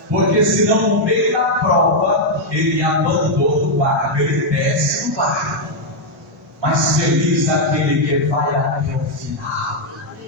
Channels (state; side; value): normal; both; correlation -0.01